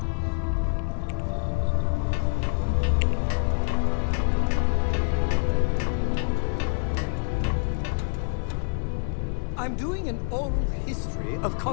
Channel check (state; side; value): silent; right; digital silence